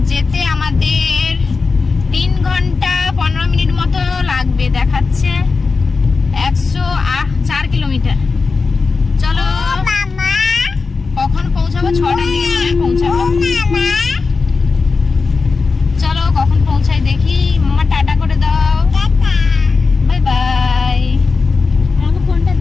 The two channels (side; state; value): right; quieter; 4.4 dB